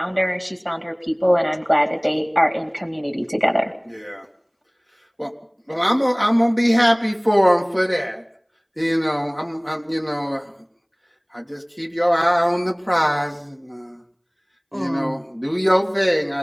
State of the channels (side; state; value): both; identical; correlation 1.00